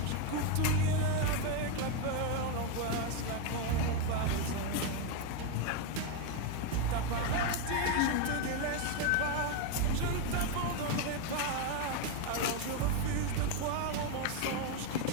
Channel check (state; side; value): different; both; correlation 0.02